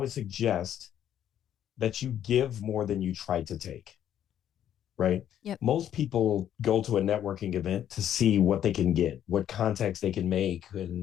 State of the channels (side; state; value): right; quieter; 10.5 dB